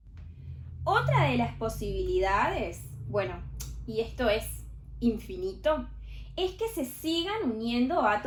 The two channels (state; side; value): identical; both; correlation 1.00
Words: Otra de las posibilidades, bueno, y esto es infinito, es que se sigan uniendo